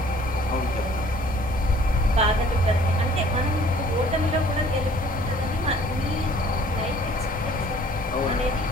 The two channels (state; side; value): normal; both; correlation 0.55